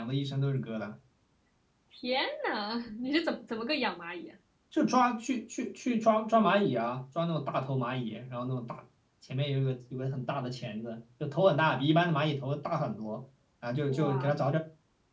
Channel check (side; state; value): both; identical; correlation 1.00